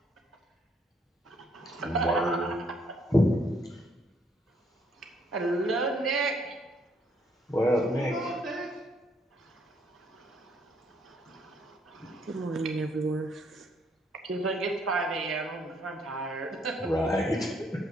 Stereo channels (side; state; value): both; normal; correlation 0.69